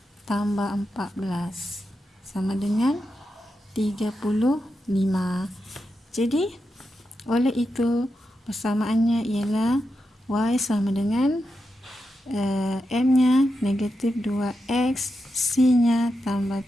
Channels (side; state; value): both; normal; correlation 0.87